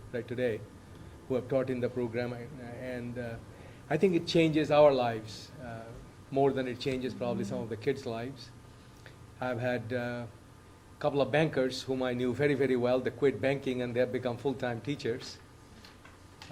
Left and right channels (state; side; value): identical; both; correlation 1.00